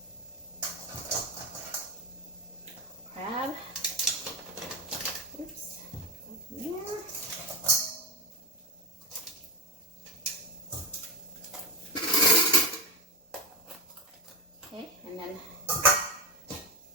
Crab. Oops. There. Okay, and then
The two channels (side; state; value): both; normal; correlation 0.16